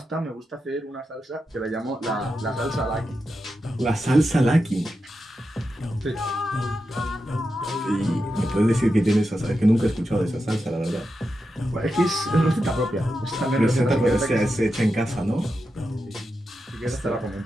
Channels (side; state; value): both; normal; correlation 0.89